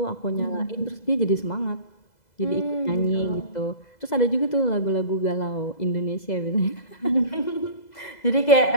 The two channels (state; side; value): late; right; 2.0 ms